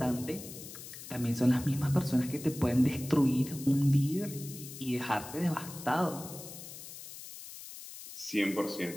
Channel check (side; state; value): left; noise; hiss, 13 dB below the sound